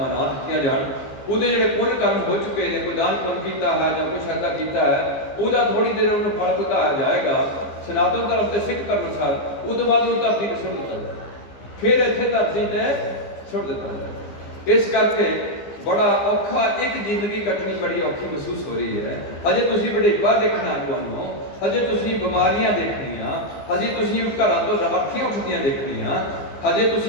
ਨਾ ਦਿੱਤੀਆਂ ਜਾਣ। ਉਹਦੇ ਜਿਹੜੇ ਪੁੰਨ ਕਰਮ ਹੋ ਚੁੱਕੇ ਨੇ, ਕੋਈ ਦਾਨ ਪੁੰਨ ਕੀਤਾ ਹੈ ਜਾਂ ਕੁਛ ਐਸਾ ਕੀਤਾ ਹੈ, ਉਹਦਾ ਥੋੜੀ ਦੇਰ ਉਹਨੂੰ ਫਲ ਭੁਗਤਾਇਆ ਜਾਏਗਾ ਸਨਾਤਨ ਧਰਮ ਤੇ ਸਿੱਖ ਧਰਮ ਅਨੁਸਾਰ। ਉਹ ਤੋਂ ਬਾਅਦ ਉਹ ਧਰਤੀ ਤੇ ਸੁੱਟ ਦਿੱਤਾ ਜਾਏ, ਫਿਰ ਇੱਥੇ ਧਰਤੀ ਤੇ ਸੁੱਟ ਦਿੱਤਾ ਜਾਏ। ਇਸ ਕਰਕੇ ਬੜਾ ਔਖਾ, ਇੱਕ ਜ਼ਿੰਦਗੀ ਕੱਟਣੀ ਬੜੀ ਔਖੀ ਮਹਿਸੂਸ ਹੋ ਰਹੀ ਹੈ। ਅਜੇ ਤੁਸੀਂ ਵਡੇਪਾ ਦੇਖਣਾ ਤੁਹਾਨੂੰ, ਅਜੇ ਤੁਸੀਂ ਬਿਮਾਰੀਆਂ ਦੇਖਣੀਆਂ, ਅਜੇ ਤੁਸੀਂ ਘਰਾਂ ਤੋਂ ਰਾਖੀਆਂ ਉੱਠਦੀਆਂ ਦੇਖਣੀਆਂ, ਅਜੇ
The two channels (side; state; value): right; late; 15 ms